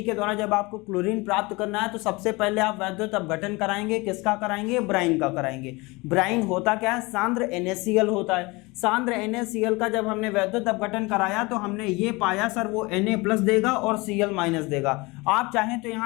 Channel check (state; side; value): quieter; right; 24.5 dB